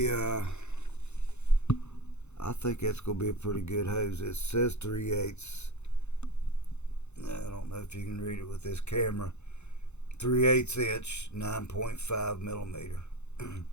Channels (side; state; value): right; late; 0.82 ms